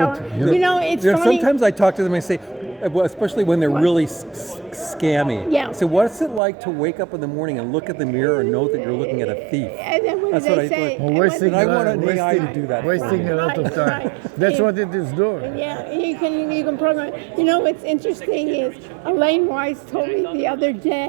what- him, you know, it's You know, funny. sometimes I talk to them and say, well, especially when they're really scammy. Yeah. So what's it like to wake up in the morning and look at the mirror and know that you're looking at a thief? And then what That's do what they I say? thought. Well, And wasting, I want an AI to wasting- do that for wasting me. a lot of Right, time. right. That's Yeah. what it is doing. Yeah, you can program. You know what's interesting is Elaine Weiss told me the other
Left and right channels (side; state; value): left; drops out; at 6.4 s